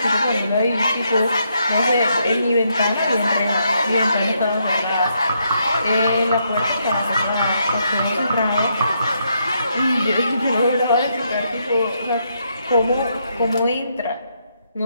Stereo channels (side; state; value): both; inverted; correlation -0.77